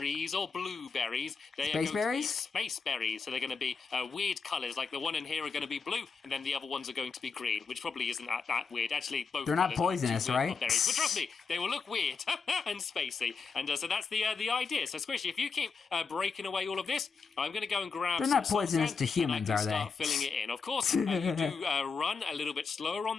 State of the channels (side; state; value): right; quieter; 5.2 dB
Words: or blueberries. They space berries. Space berries. So they're going to be weird colours. Like the one in here are going to be blue. And then the other ones are going to be green, which probably isn't that weird. Actually, both they're not poisonous, right? Berries. But trust me, they will look weird and spacey. And so that's the idea. So Squishy, if you keep breaking away all of this, I'm going to go and grab. They're not poisonous to humans, are they? Start filling it in. Of course, you do run a little bit slower